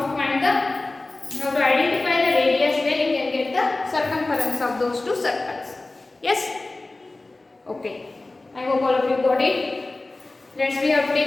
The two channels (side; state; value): right; quieter; 3.1 dB